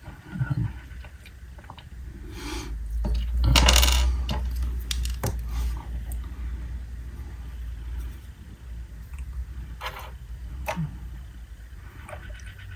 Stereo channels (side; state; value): both; identical; correlation 1.00